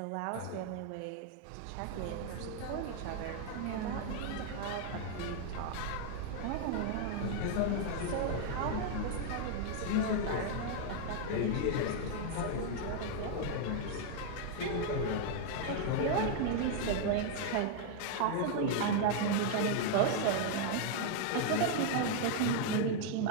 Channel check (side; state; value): both; different; correlation 0.00